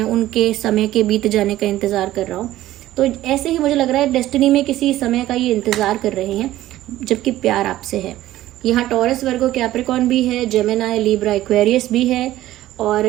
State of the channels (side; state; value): left; quieter; 14.7 dB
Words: उनके समय के बीत जाने का इंतज़ार कर रहा हूँ। तो ऐसे ही मुझे लग रहा है डेस्टिनी में किसी समय का ये इंतज़ार कर रहे हैं, जबकि प्यार आपसे है। यहाँ टॉरस, वर्गो, कैप्रिकॉर्न भी है, जेमिनाई, लिब्रा, एक्वेरियस भी है, और